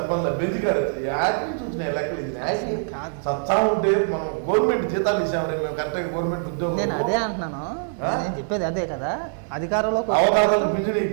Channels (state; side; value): silent; left; 58 dB below the other